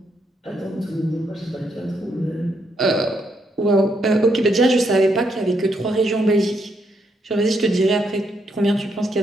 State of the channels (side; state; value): both; normal; correlation 0.77